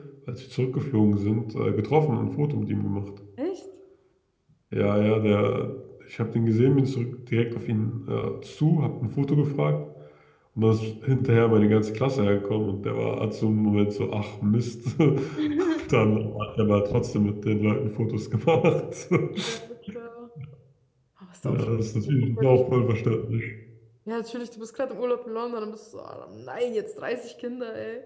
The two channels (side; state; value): both; identical; correlation 1.00